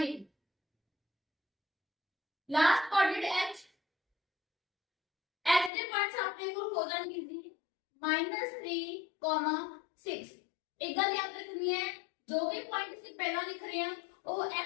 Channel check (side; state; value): right; drops out; at 5.7 s